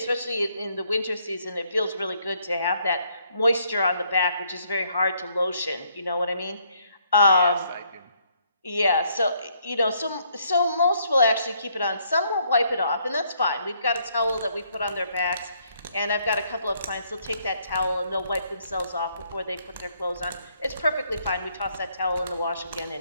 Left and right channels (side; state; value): both; inverted; correlation -0.69